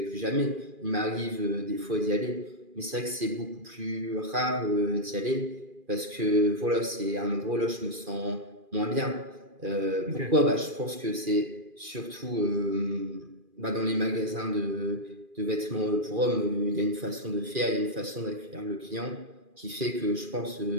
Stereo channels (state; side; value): late; left; 2.4 ms